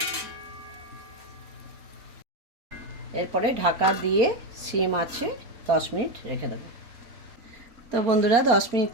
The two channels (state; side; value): late; left; 4.3 ms